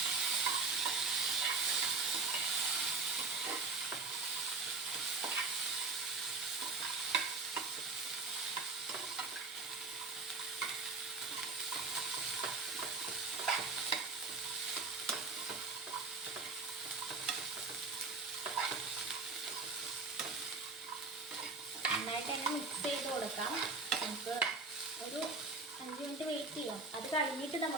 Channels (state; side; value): quieter; left; 3.8 dB